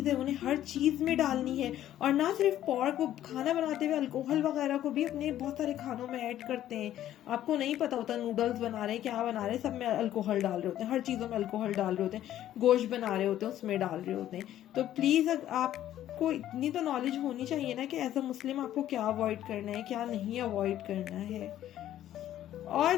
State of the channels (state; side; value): quieter; right; 12.3 dB